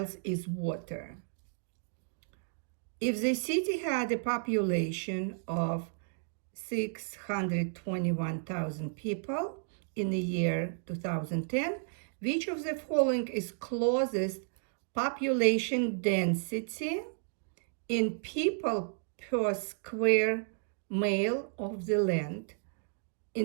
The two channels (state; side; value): silent; left; digital silence